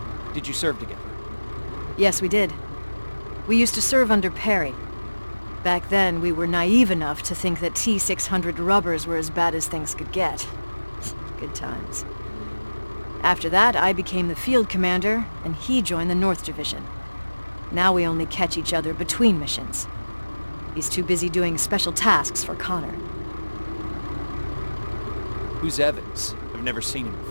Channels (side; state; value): both; inverted; correlation -1.00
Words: Did you serve together? Yes, we did. We used to serve under Perry. Back then, we were naive enough to think that T-600 rubbers were as bad as things could get. Good times. After that, I became the field commander, and he joined the North Division. Now we only catch each other between missions. He's too busy doing special tasks for Connor. Who's Evans? I've never seen him